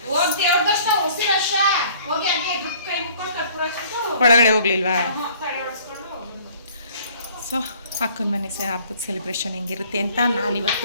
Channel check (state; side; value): inverted; both; correlation -0.55